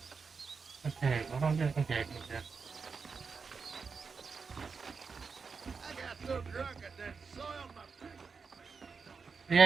Okay, what am I doing? Okay, okay. I got so drunk I done soiled my pants.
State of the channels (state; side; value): quieter; left; 5.2 dB